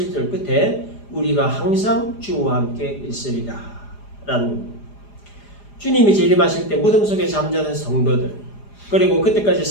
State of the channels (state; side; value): late; right; 4.9 ms